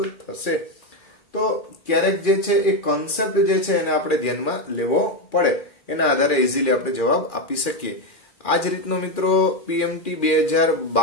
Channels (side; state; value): right; late; 2.4 ms